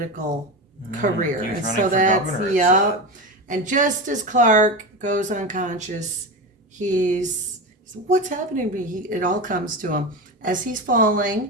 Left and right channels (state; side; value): normal; both; correlation 0.21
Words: career. He was And running so for that's, governor, it yep. And just as Clark goes unconscious, he's what's happening to me? It all comes to him. As he's